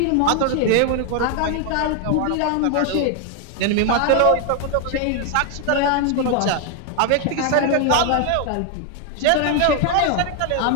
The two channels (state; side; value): different; both; correlation 0.00